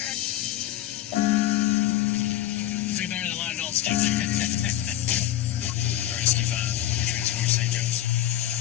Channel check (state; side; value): quieter; right; 12.9 dB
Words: Way better than a lot of adults do. Rescue 5, Transport St. Joe's.